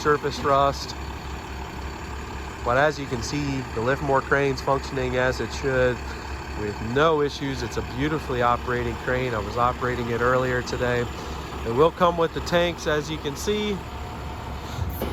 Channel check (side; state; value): both; identical; correlation 1.00